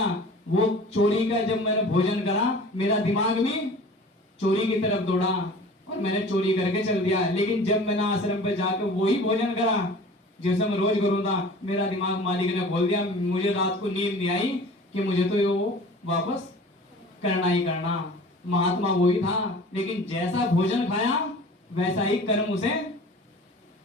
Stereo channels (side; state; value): both; normal; correlation 0.42